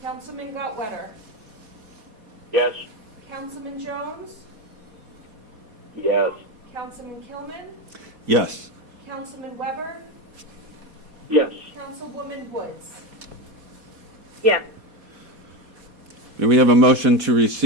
Councilman Gottwetter? Yes. Councilman Jones? Yes. Councilman Kilman? Yes. Councilman Weber? Yes. Councilwoman Woods? Yes. May we have a motion to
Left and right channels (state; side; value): late; left; 4.2 ms